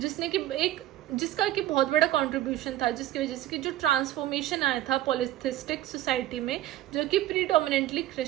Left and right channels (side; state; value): left; quieter; 14.1 dB